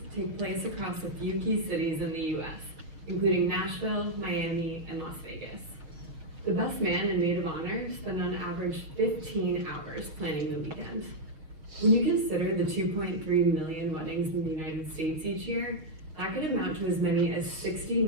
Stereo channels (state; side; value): late; left; 6.2 ms